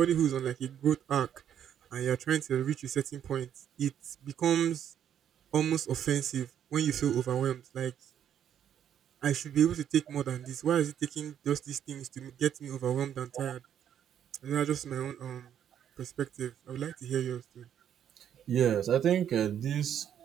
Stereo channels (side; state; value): left; quieter; 9.5 dB